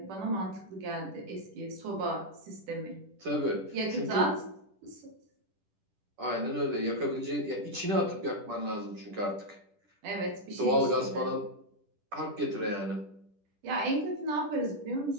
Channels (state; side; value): late; left; 10 ms